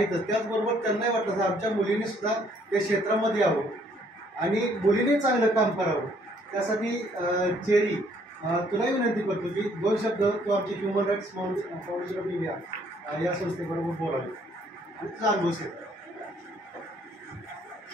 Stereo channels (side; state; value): both; normal; correlation 0.64